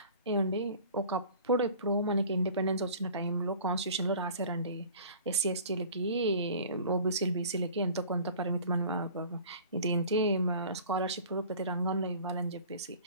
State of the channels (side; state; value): both; inverted; correlation -0.45